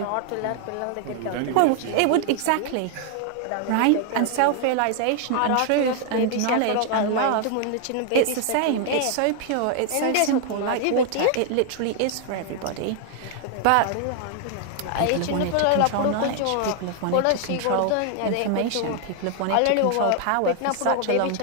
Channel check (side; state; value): both; different; correlation 0.00